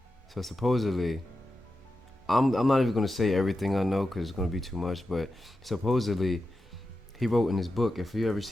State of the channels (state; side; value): normal; both; correlation 0.90